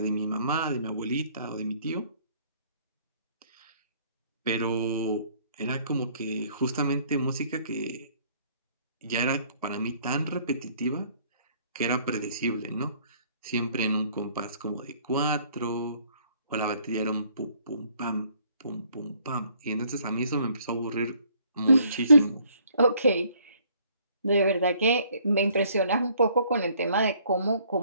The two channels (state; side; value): inverted; both; correlation -0.62